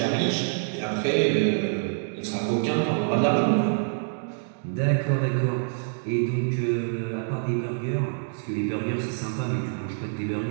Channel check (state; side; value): silent; left; digital silence